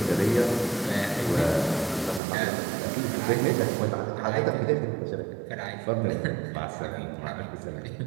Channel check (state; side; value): drops out; left; at 2.2 s